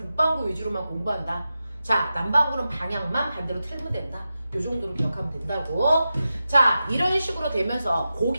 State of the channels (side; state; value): both; inverted; correlation -0.92